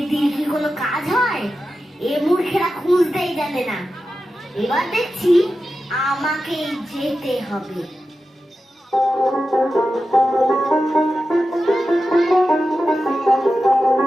কি কোনো কাজ হয়? এ মূর্খেরা খুঁজতেই জানে না। এবার দেখছি আমাকেই যেতে হবে।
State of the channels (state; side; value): normal; both; correlation 0.92